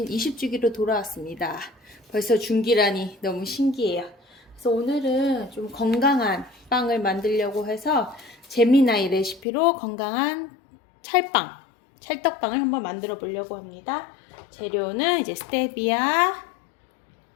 20주기로 돌아왔습니다. 벌써 중기라니 너무 신기해요. 그래서 오늘은 좀 건강한 빵을 만들려고 해서 재미나이 레시피로 건강한 찰빵, 찰떡빵을 한번 만들어 보려고 합니다. 재료는 이제 스테비아,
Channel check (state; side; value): drops out; right; at 9.5 s